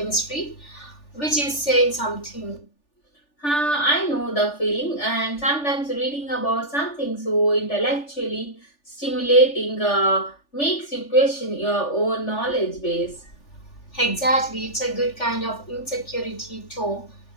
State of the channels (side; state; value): right; late; 3.4 ms